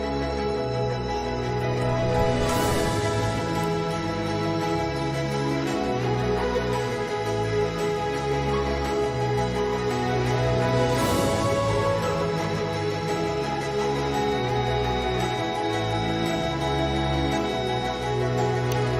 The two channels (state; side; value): identical; both; correlation 1.00